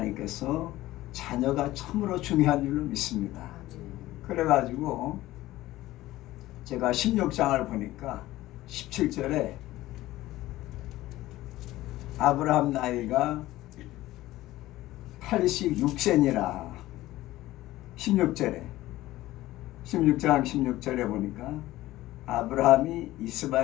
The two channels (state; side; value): quieter; right; 16.5 dB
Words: 자녀가 참으로 중요한 줄로 믿습니다. 그래가지고 제가 16장을 보니까 17절에 아브라함 나이가 86세니라 16장 16절에 보니까 아브라함이